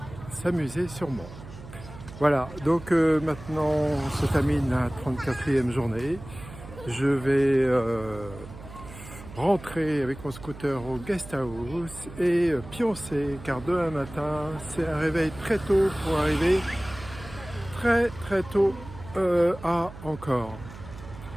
s'amuser sûrement. Voilà, donc maintenant on se termine la 34e journée. Je vais rentrer avec mon scooter au guest house et pioncer, car demain matin c'est un réveil très tôt pour arriver très tôt à Angkor.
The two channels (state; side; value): noise; right; hum, 15 dB below the sound